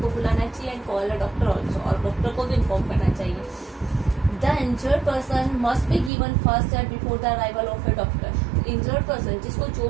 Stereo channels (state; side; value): drops out; left; at 6.1 s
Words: बुलाना चाहिए and call a doctor also, और डॉक्टर को भी इन्फॉर्म करना चाहिए. The injured person must be given first aid before the arrival of A doctor. Injured person जिसको